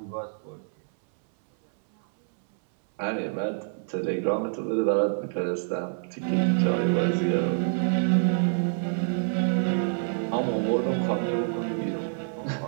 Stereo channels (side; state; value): left; silent; 60 dB below the other